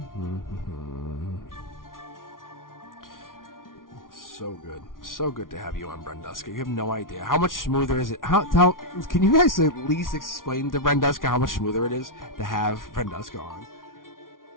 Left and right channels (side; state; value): right; late; 0.90 ms